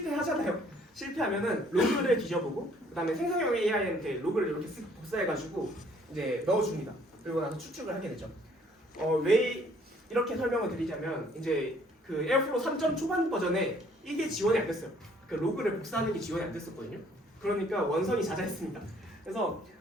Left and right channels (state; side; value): normal; both; correlation 0.61